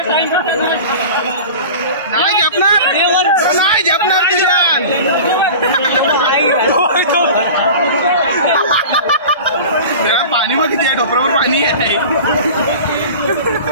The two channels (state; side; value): inverted; both; correlation -0.36